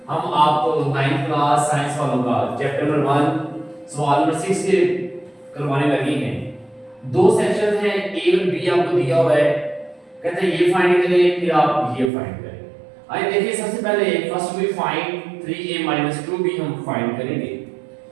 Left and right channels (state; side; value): drops out; left; at 12.1 s